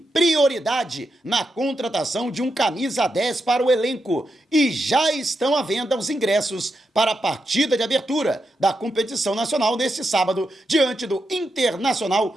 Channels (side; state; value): both; normal; correlation 0.85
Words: prioridade na contratação de um camisa 10 para o elenco e já estão à venda os ingressos para a partida de abertura da competição nacional neste sábado, diante do Internacional